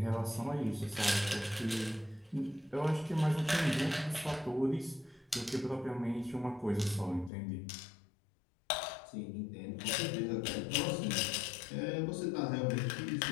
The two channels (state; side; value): drops out; right; at 7.3 s